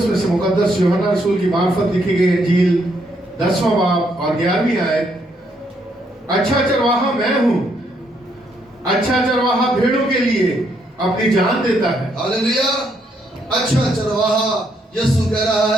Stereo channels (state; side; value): normal; both; correlation 0.74